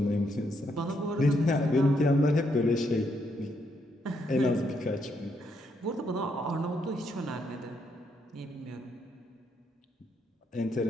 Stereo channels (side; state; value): both; normal; correlation 0.76